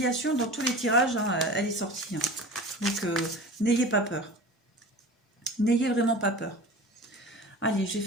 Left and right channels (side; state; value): both; normal; correlation 0.36